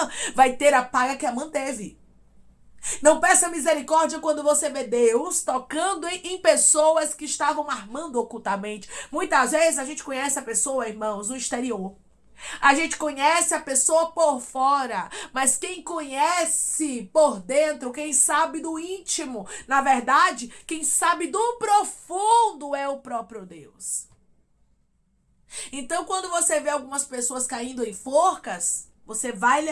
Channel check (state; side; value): identical; both; correlation 1.00